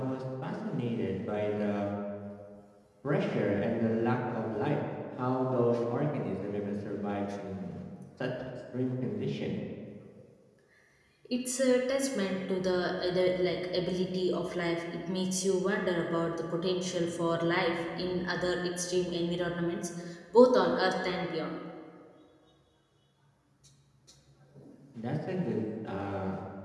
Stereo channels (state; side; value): identical; both; correlation 1.00